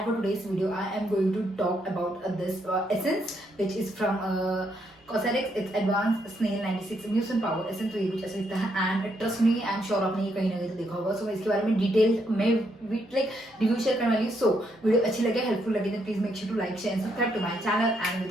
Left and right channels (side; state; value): both; normal; correlation 0.76